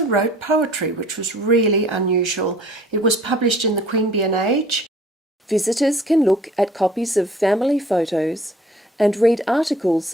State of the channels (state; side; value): normal; both; correlation 0.52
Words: wrote poetry, which was really unusual. It was published in the Queanbeyan Age. Visitors can look at copies of family photos and read